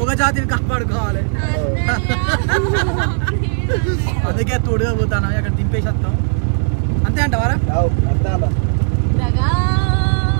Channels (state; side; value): silent; left; digital silence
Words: జాతిని కాపాడుకోవాలి. అందుకే తోడుగా పోతాను అక్కడ దింపేసి వస్తాం. అంతే అంటావారా?